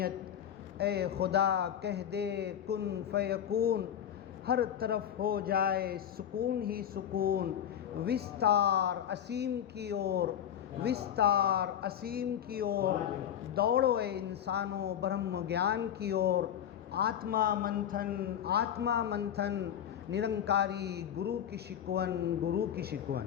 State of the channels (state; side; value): quieter; right; 9.7 dB